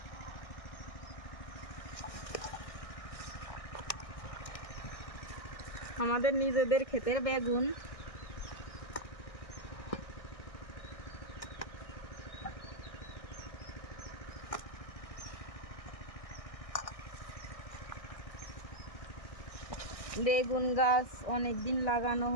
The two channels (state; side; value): late; right; 1.6 ms